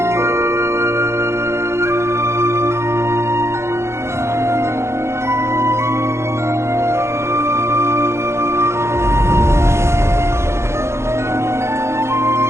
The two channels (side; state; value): left; late; 0.13 ms